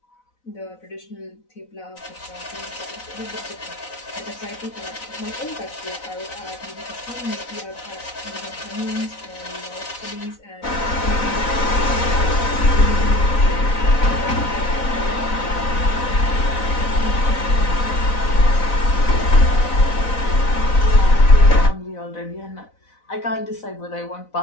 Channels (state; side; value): late; right; 4.0 ms